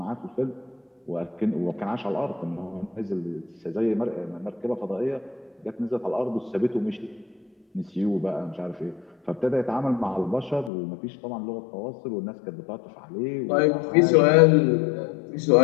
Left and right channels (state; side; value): drops out; right; at 10.7 s